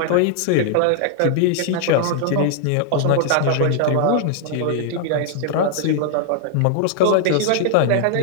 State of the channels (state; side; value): different; both; correlation 0.00